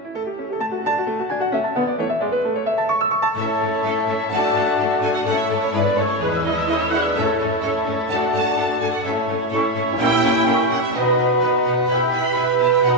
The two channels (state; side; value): normal; both; correlation 0.18